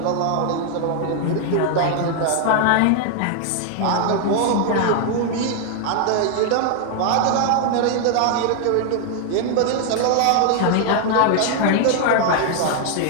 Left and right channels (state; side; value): different; both; correlation 0.00